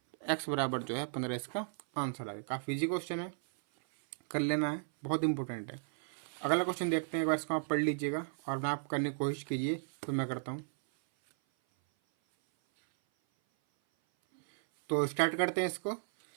x बराबर जो है 15 इसका आंसर आ गया। काफ़ी इजी क्वेश्चन है, कर लेना है, बहुत इंपॉर्टेंट है। अगला क्वेश्चन देखते हैं, एक बार इसको आप पढ़ लीजिएगा और मैं आप करने की कोशिश कीजिए, तो मैं करता हूँ। तो स्टार्ट करते हैं इसको।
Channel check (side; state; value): left; silent; 55 dB below the other